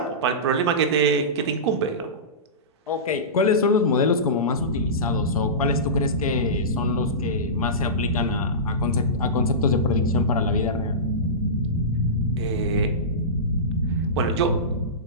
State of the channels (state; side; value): normal; both; correlation -0.20